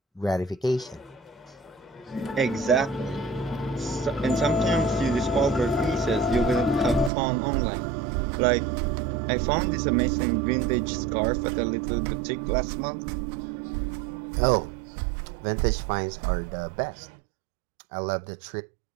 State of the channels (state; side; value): drops out; left; at 7.1 s